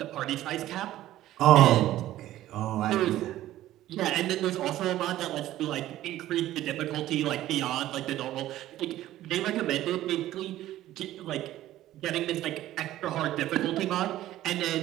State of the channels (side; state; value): left; quieter; 14.2 dB